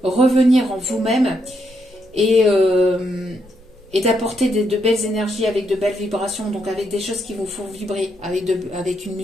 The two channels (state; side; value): normal; both; correlation 0.78